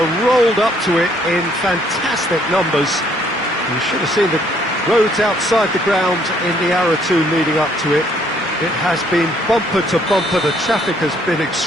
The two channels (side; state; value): both; normal; correlation 0.65